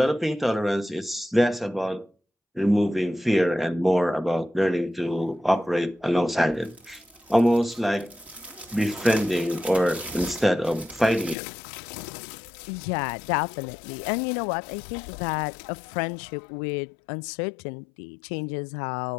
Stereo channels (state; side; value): drops out; right; at 11.4 s